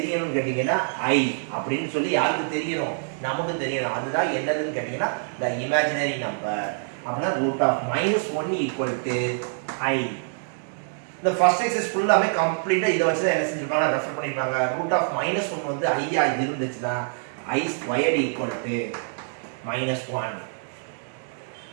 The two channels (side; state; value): left; silent; digital silence